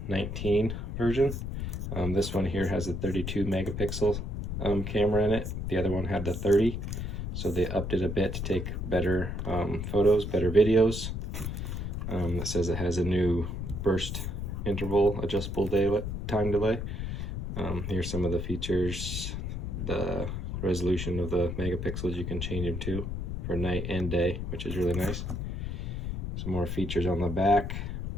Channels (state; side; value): noise; left; rumble, 4 dB below the sound